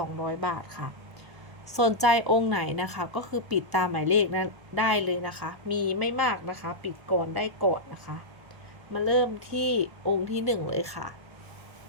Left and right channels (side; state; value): left; late; 1.1 ms